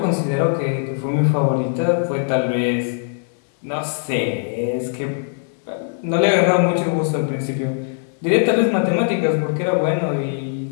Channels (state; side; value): silent; right; 65 dB below the other